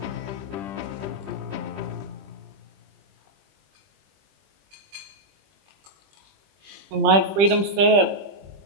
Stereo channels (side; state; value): left; late; 20 ms